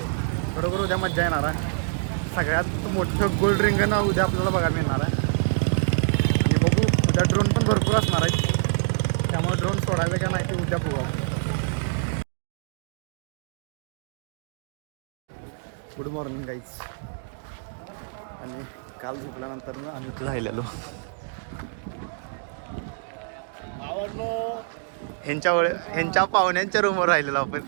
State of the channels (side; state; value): left; silent; digital silence